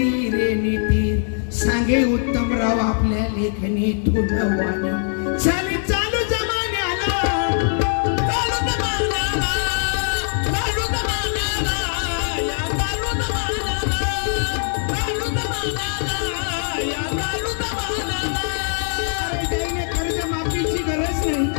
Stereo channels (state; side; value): silent; right; digital silence